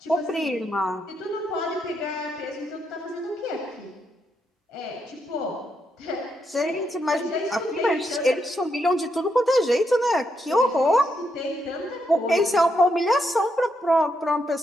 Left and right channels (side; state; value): both; normal; correlation 0.80